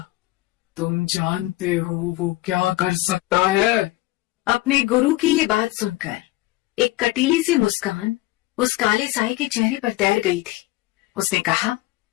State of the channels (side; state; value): right; quieter; 18.4 dB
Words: तुम जानते हो वो क्या कर सकता है? अपने गुरु की ये बात सुनकर एक कटीली सी मुस्कान उस काले साए के चेहरे पर तैर गई थी। उसने कहा,